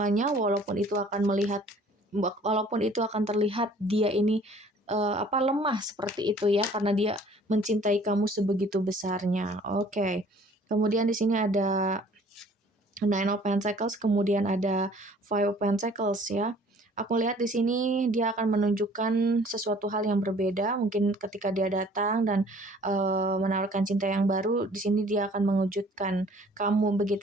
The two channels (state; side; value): normal; both; correlation 0.54